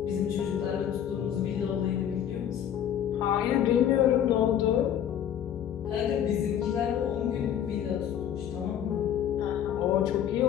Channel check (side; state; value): right; quieter; 9.8 dB